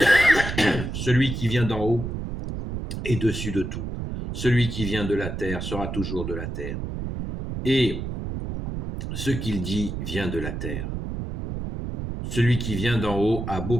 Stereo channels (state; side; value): noise; right; rumble, 5 dB below the sound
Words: Celui qui vient d'en haut est dessus de tout. Celui qui vient de la terre sera toujours de la terre. Et ce qu'il dit vient de la terre. Celui qui vient d'en haut a